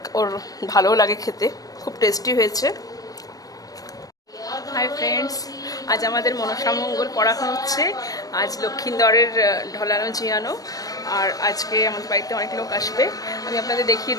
ওর ভালোও লাগে খেতে। খুব টেস্টি হয়েছে। হাই ফ্রেন্ডস, আজ আমাদের মনসা মঙ্গল পড়ানো হচ্ছে। আজ লক্ষ্মীন্দরের ঢলানো জিয়ানো, আর আজকে আমাদের বাড়িতে অনেক লোক আসবে। আমি আপনাদের দেখিয়ে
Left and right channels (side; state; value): right; late; 0.18 ms